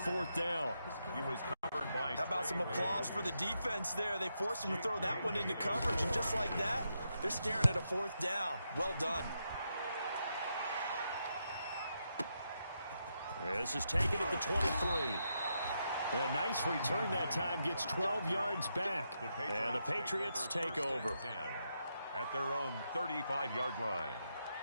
down. He was covered by... How about some applause for the defense there? They forced him to throw that one into coverage, and just like that, they're staring at a 4th down. Well done. This is taken at the 23. A nice return that time, gets 12 yards back. And the Patriots take over. At their own 35-yard line.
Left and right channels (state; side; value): inverted; both; correlation -0.83